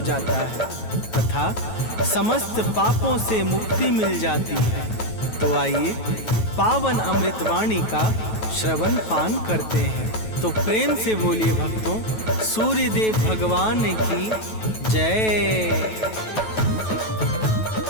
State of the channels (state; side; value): late; right; 9.2 ms